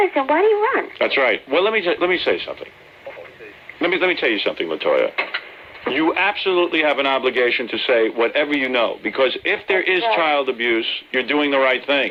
why do you run? That's right. Well, let me say something. Let me tell you something, Latoya. You absolutely have an obligation to say whatever you know, because if there is child abuse, you're doing the right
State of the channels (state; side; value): identical; both; correlation 1.00